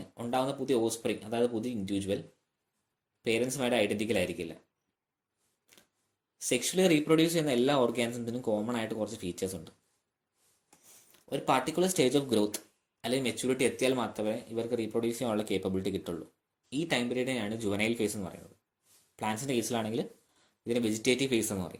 ഉണ്ടാകുന്ന പുതിയ ഓസ്പ്രിങ്, അതായത് പുതിയ ഇൻഡിവിജ്വൽ പേരൻസുമായിട്ട് ഐഡന്റിക്കൽ ആയിരിക്കില്ല. സെക്ഷലി റീപ്രൊഡ്യൂസ് ചെയ്യുന്ന എല്ലാ ഓർഗാനിസത്തിനും കോമൺ ആയിട്ട് കുറച്ച് ഫീച്ചേഴ്സ് ഉണ്ട്. ഒരു പർട്ടിക്കുലർ സ്റ്റേജ് ഓഫ് ഗ്രോത്ത് അല്ലെങ്കിൽ മെച്യൂരിറ്റി എത്തിയാൽ മാത്രമേ ഇവർക്ക് റീപ്രൊഡ്യൂസ് ചെയ്യാനുള്ള കേപ്പബിലിറ്റി കിട്ടുള്ളൂ. ഈ ടൈം പീരീഡിനെയാണ് ജുവനൈൽ ഫേസ് എന്ന് പറയുന്നത്. പ്ലാന്റ്സിൻ്റെ കേസിലാണെങ്കിൽ ഇതിന് വെജിറ്റേറ്റീവ് ഫേസ് എന്ന്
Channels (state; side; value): identical; both; correlation 1.00